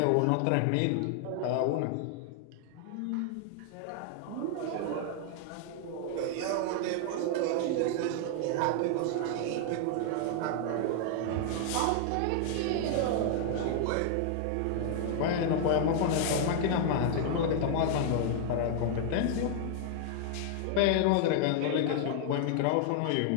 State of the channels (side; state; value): both; different; correlation 0.00